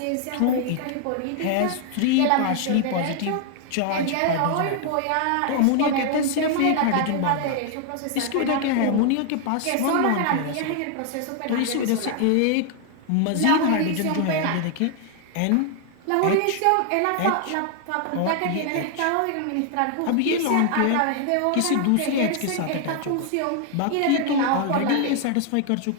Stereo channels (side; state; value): both; different; correlation 0.00